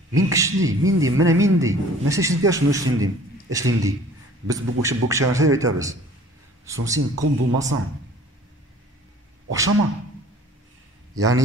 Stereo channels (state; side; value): normal; both; correlation 0.50